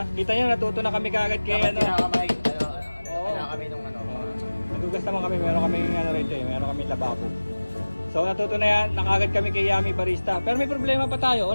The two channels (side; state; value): both; inverted; correlation -1.00